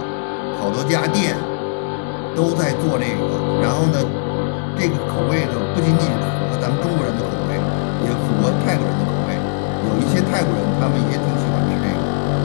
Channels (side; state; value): right; silent; 67 dB below the other